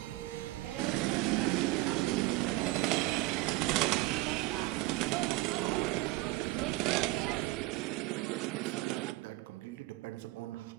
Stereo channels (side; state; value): left; quieter; 19.4 dB